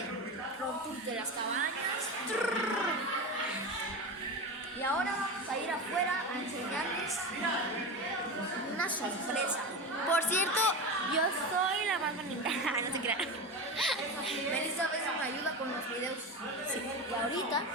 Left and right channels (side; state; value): both; normal; correlation 0.23